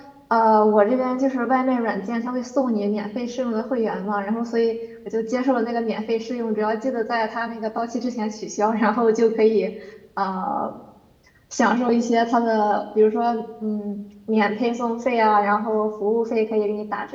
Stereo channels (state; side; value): identical; both; correlation 1.00